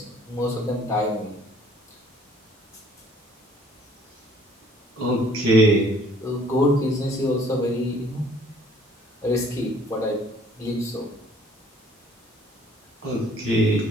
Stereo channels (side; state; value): both; normal; correlation 0.57